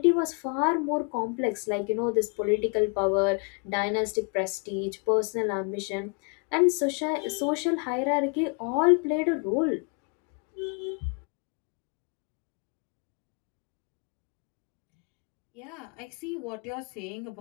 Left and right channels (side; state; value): right; quieter; 36.1 dB